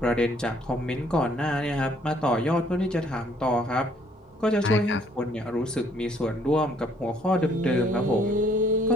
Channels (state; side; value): normal; both; correlation 0.63